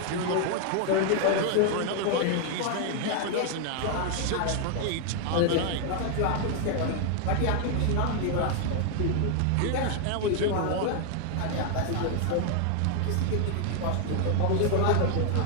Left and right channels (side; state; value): both; different; correlation 0.00